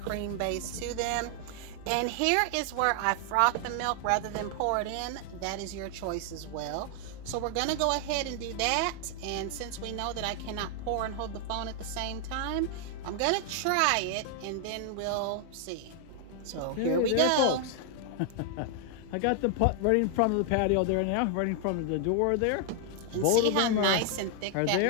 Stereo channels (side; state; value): both; different; correlation 0.00